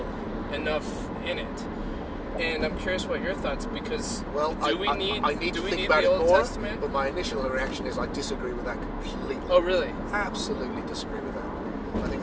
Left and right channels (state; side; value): identical; both; correlation 1.00